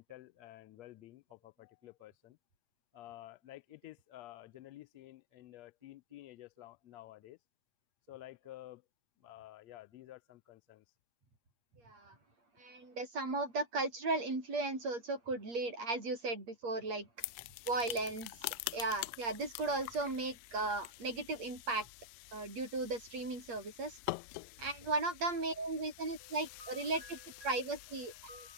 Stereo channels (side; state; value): left; late; 8.5 ms